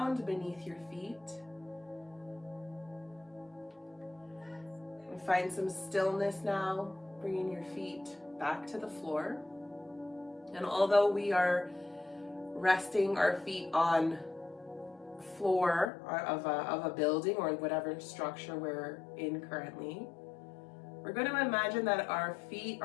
beneath your feet. And find some stillness now, bringing your feet back to the floor. And although we are resting our feet on floor of a building or whatever structure we're in currently, we're going to imagine that our feet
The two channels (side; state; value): right; drops out; at 15.9 s